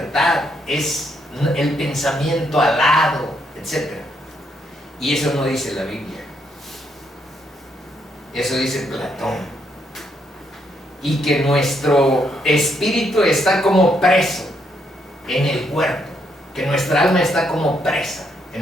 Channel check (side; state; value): both; normal; correlation 0.75